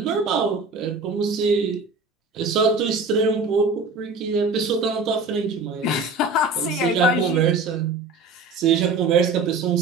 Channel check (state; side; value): quieter; left; 3.7 dB